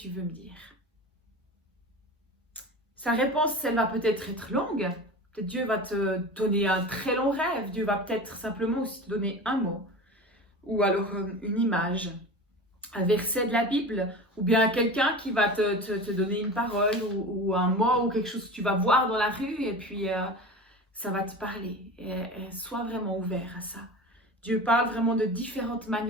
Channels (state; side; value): normal; both; correlation 0.32